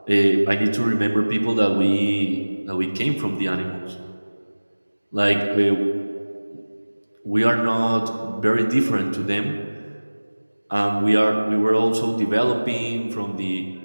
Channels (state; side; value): inverted; both; correlation -1.00